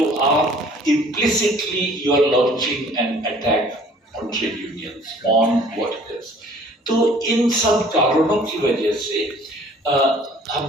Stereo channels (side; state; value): both; normal; correlation 0.54